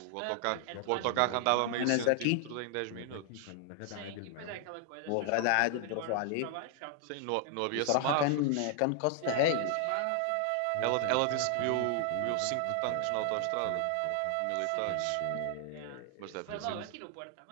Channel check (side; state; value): both; different; correlation 0.00